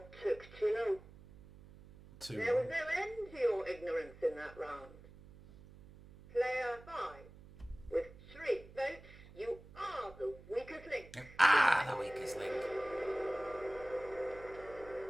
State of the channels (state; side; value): noise; right; hum, 19 dB below the sound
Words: took too long. 2. There was no end to your ignorance in that round. Player 5. With 3 votes, you are the weakest link. Ah, the weakest link.